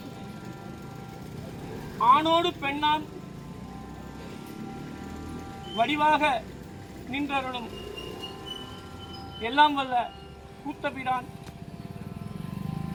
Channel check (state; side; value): identical; both; correlation 1.00